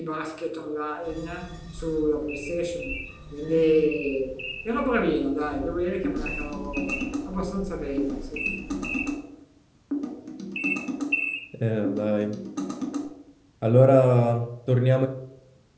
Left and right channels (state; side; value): identical; both; correlation 1.00